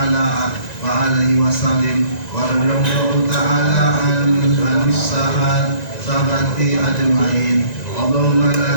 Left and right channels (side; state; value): right; late; 1.9 ms